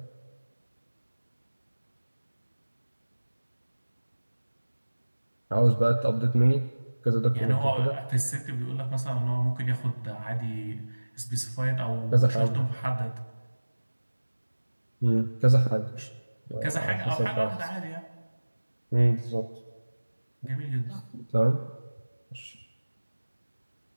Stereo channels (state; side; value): inverted; both; correlation -1.00